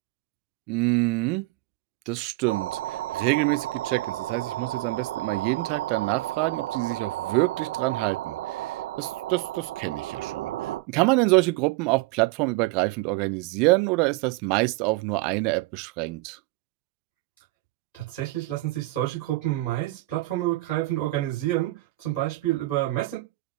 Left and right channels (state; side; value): quieter; left; 19.8 dB